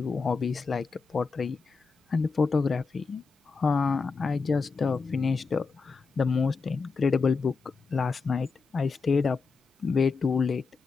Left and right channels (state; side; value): quieter; right; 4.7 dB